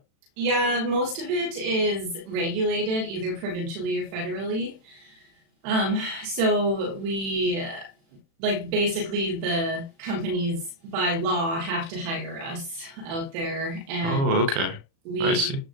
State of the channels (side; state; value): left; late; 36 ms